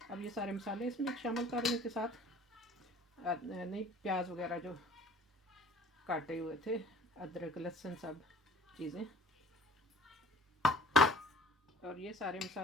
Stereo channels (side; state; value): both; normal; correlation 0.49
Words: अब ये सारे मसाले इसमें शामिल कर लें के साथ, नहीं प्याज वगैरह जो काटे हुए थे, अदरक लहसुन सब चीज़ें, और ये सारे